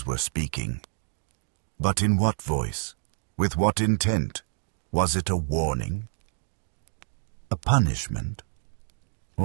were speaking. But in what voice? With what intent? Was it a warning? A punishment?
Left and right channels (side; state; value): left; silent; digital silence